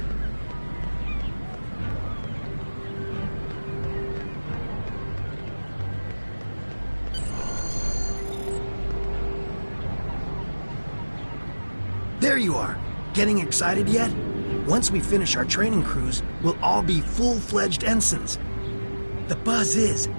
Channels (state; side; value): inverted; both; correlation -1.00